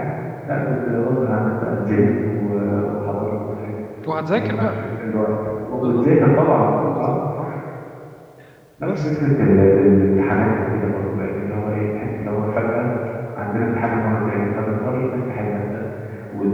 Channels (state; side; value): identical; both; correlation 1.00